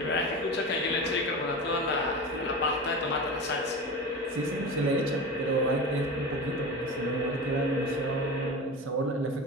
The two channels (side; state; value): both; normal; correlation 0.28